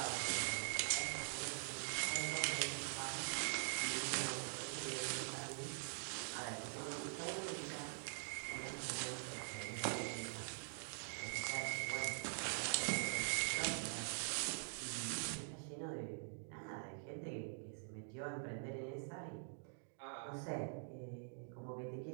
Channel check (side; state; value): left; silent; digital silence